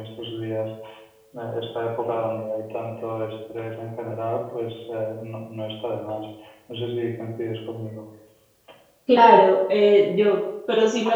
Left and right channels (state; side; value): identical; both; correlation 1.00